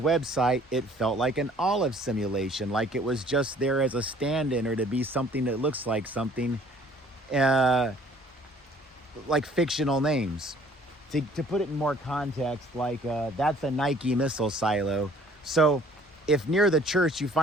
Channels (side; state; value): both; normal; correlation 0.56